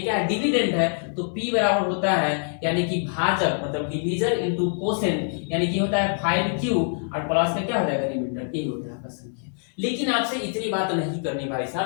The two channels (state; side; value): silent; right; digital silence